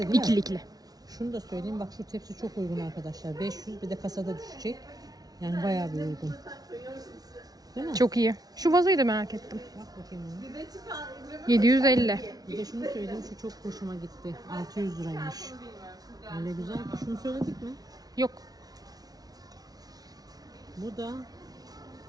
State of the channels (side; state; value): left; late; 0.19 ms